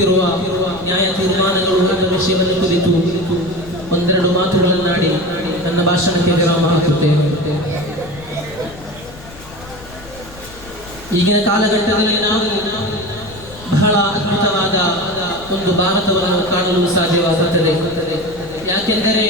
ನ್ಯಾಯ ತೀರ್ಮಾನಗಳು ಎಂಬ ವಿಷಯವನ್ನು ಕುರಿತು ಒಂದೆರಡು ಮಾತುಗಳನ್ನಾಡಿ ನನ್ನ ಭಾಷಣಕ್ಕೆ ವಿರಾಮ ಹಾಕುತ್ತೇನೆ. ಈಗಿನ ಕಾಲಘಟ್ಟದಲ್ಲಿ ನಾವು ಬಹಳ ಅದ್ಭುತವಾದ ಒಂದು ಭಾರತವನ್ನು ಕಾಣಲು ಸಾಧ್ಯವಾಗುತ್ತದೆ. ಯಾಕೆಂದರೆ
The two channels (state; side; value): noise; left; rumble, 19 dB below the sound